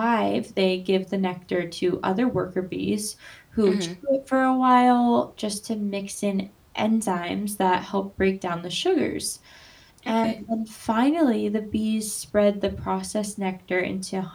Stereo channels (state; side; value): identical; both; correlation 1.00